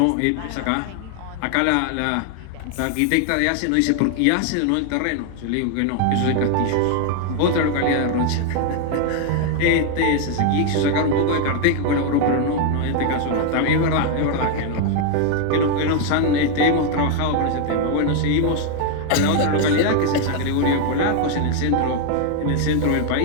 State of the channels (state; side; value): different; both; correlation 0.01